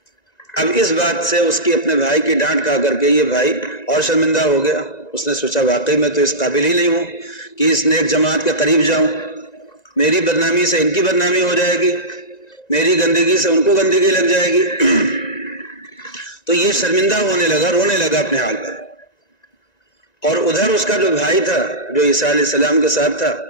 اب اس بات سے اس کی اپنے بھائی کی ڈانٹ کھا کر کے یہ بھائی اور شرمندہ ہو گیا، اس نے سوچا واقعی میں تو اس قابل ہی نہیں ہوں کہ اس نیک جماعت کے قریب جاؤں، میری بدنامی سے ان کی بدنامی ہو جائے گی، میری گندگی سے ان کو گندگی لگ جائے گی۔ تو یہ شرمندہ ہونے لگا، رونے لگا اپنے حال پر، اور ادھر اس کا جو بھائی تھا، جو عیسیٰ علیہ السلام کے ساتھ تھا،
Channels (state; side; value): late; right; 1.9 ms